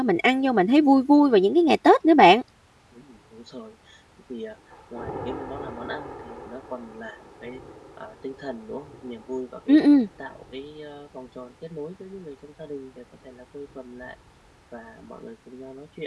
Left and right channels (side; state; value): both; identical; correlation 1.00